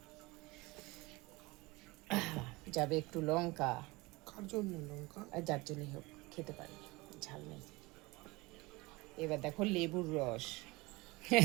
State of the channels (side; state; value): left; quieter; 23.1 dB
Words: যাবে একটু লঙ্কা। কার জন্য লঙ্কা? আর যার জন্যই হোক, খেতে পারি, ঝাল নেই। এবার দেখো লেবুর রস।